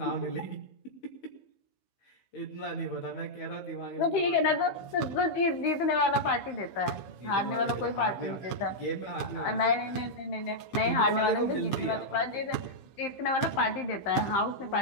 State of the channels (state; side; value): late; right; 15 ms